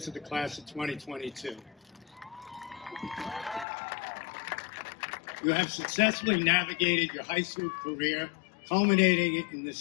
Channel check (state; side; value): drops out; right; at 3.7 s